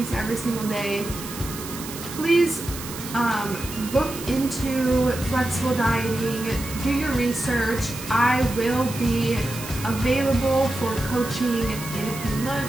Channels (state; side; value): noise; right; hiss, 11 dB below the sound